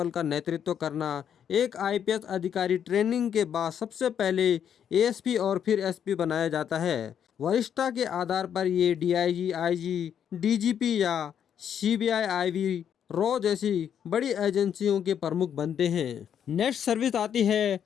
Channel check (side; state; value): right; quieter; 8.7 dB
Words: का नेतृत्व करना। एक आईपीएस अधिकारी ट्रेनिंग के बाद सबसे पहले एएसपी और फिर एसपी बनाया जाता है। वरिष्ठता के आधार पर ये डीआईजी, आईजी, डीजीपी या सीबीआई, आईवी, रॉ जैसी बड़ी एजेंसियों के प्रमुख बनते हैं। नेक्स्ट सर्विस आती है